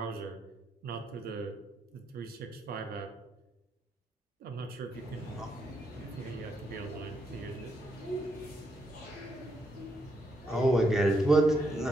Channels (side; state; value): both; normal; correlation 0.78